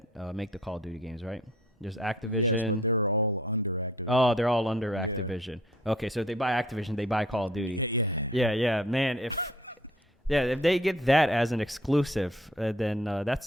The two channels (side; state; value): both; normal; correlation 0.57